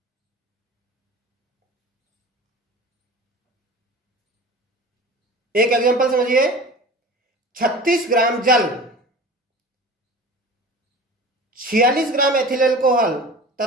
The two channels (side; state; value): both; normal; correlation 0.37